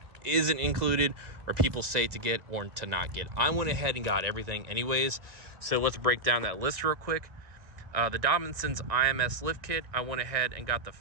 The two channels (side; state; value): left; late; 2.1 ms